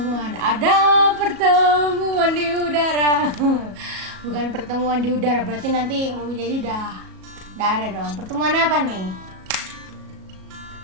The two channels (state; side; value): late; left; 37 ms